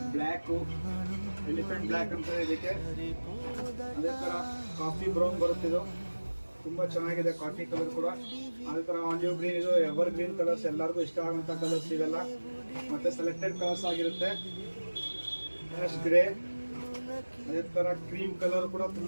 black, elephant black ಅಂತ ಇದಕ್ಕೆ. ಅದೇ ತರ ಕಾಫಿ ಬ್ರೌನ್ ಬರುತ್ತಿದ್ದು, ತುಂಬಾ ಚೆನ್ನಾಗಿದೆ ಕಾಫಿ ಕಲರ್ ಕೂಡ. ಅದೇ ತರ ಆಲಿವ್ ಗ್ರೀನ್, ಇದು ಎವರ್ ಗ್ರೀನ್ ಕಲರ್ಸ್, ಎಲ್ಲರಿಗೂ ಇಷ್ಟ ಆಗುವಂತ ಕಲರ್ಸ್ ಇವೆಲ್ಲ. ಮತ್ತೆ ಸೆಲೆಕ್ಟೆಡ್ ಕಲರ್ಸ್ ಆಗಿರುತ್ತೆ. ಗ್ರೇ, ಅದೇ ತರ ಕ್ರೀಮ್ ಕಲರ್ ಕೂಡ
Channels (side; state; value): both; inverted; correlation -1.00